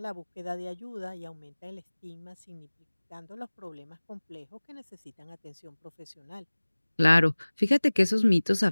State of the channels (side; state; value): both; inverted; correlation -1.00